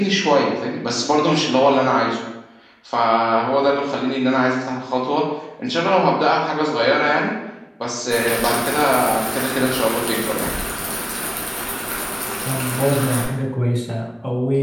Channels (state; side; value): identical; both; correlation 1.00